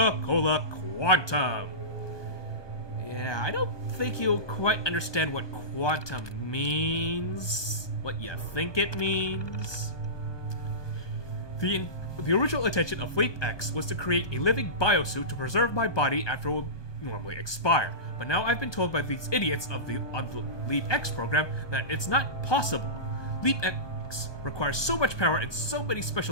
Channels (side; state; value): right; late; 1.2 ms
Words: Quantum. Yeah, I don't think you'll quite understand what quantum means. What you think it means. The original intention of LeapX was to create a living biosuit to preserve my body after it would normally expire. But now I've been told by these idiots on the LeapX program that it's not possible. LeapX requires so much power and so many